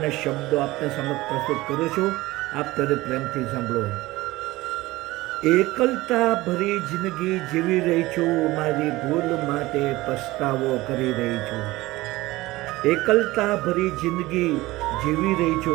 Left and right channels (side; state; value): left; quieter; 19.1 dB